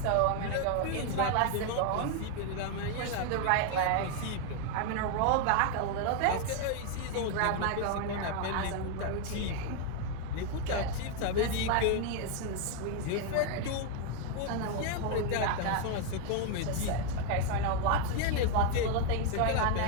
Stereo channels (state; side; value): different; both; correlation 0.01